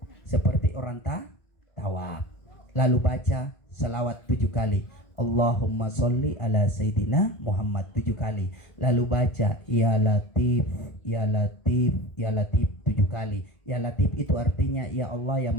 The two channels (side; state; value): right; late; 1.4 ms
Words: seperti orang tawaf, lalu baca selawat 7 kali, Allahumma sholli ala Sayyidina Muhammad 7 kali, lalu baca ya Latif ya Latif ya Latif 7 kali. Ya Latif itu artinya ya Allah yang